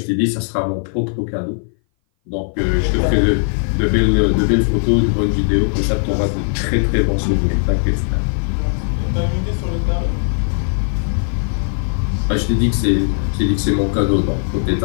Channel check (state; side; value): silent; right; 59 dB below the other